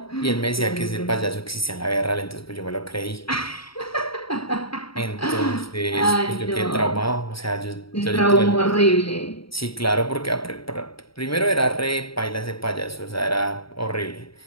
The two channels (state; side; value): late; right; 0.75 ms